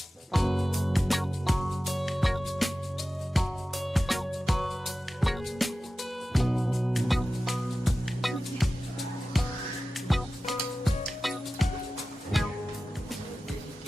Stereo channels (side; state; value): both; normal; correlation 0.95